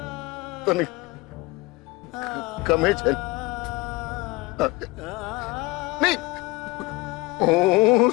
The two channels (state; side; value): quieter; right; 22.4 dB